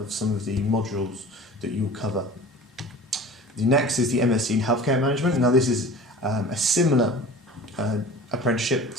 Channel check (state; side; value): normal; both; correlation 0.40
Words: some of the modules that you'll cover. The next is the MSc in Healthcare Management. Now this is a similar apprenticeship